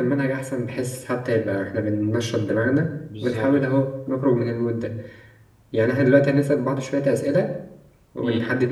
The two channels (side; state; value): both; identical; correlation 1.00